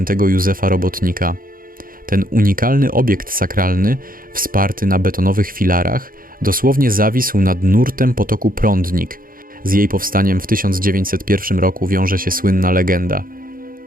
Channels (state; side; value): late; left; 0.41 ms